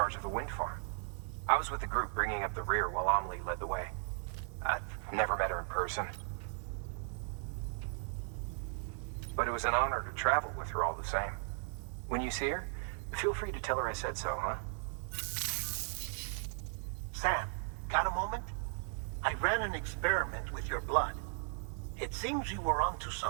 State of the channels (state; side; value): silent; left; digital silence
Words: of the wind farm. I was with the group bringing up the rear while Amelie led the way. I've never met her in person. But it was an honor to travel with her all the same. When you see her, feel free to tell her I said so, huh? Sam, got a moment? I ran an experiment with your blood. It seems you were onto